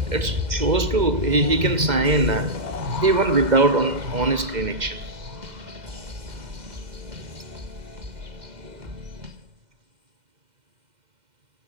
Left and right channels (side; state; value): left; late; 2.1 ms